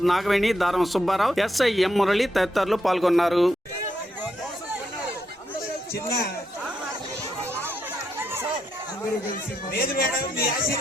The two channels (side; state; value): both; normal; correlation 0.81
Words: నాగవేణి, దారం సుబ్బారావు, ఎస్ఐ ఎం మురళి తదితరులు పాల్గొన్నారు.